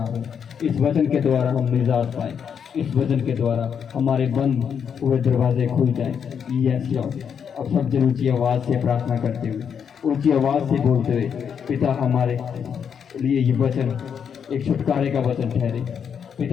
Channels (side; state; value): right; quieter; 7.4 dB